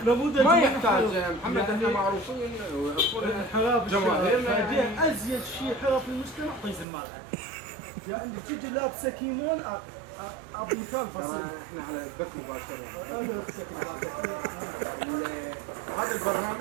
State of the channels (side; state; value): left; drops out; at 6.9 s